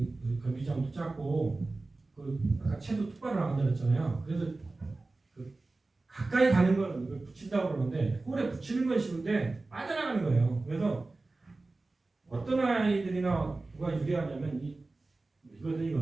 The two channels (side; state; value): left; quieter; 3.3 dB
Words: 경기장도 작고 아까 채도 똑바로 나간다 그랬잖아요. 그래서 가까이 가는 건 이걸 붙인다고 그러는데 홀에 붙이는 건 쉬운데 빠져나가는 거예요. 그래서 어떤 아이들이나 누가 유리하냐면